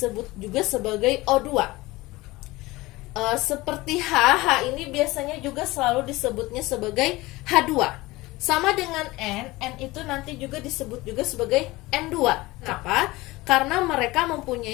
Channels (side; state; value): right; quieter; 20.4 dB